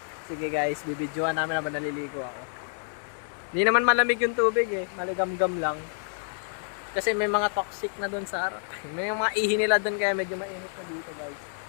Sige guys, bibidyohan namin habang naliligo ako. Hindi naman malamig yung tubig eh, maligam-gam lang. Kasi may mga toxic na doon sa harap. May mga ihi nila doon kaya medyo mainit na dito guys.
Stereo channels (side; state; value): right; silent; digital silence